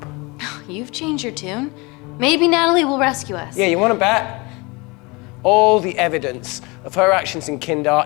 You've changed your tune. Maybe Natalie will rescue us. Yeah, you want to bet? All the evidence of her actions in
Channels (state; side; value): quieter; right; 26.3 dB